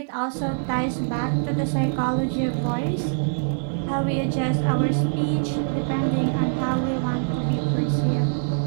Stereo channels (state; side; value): silent; left; digital silence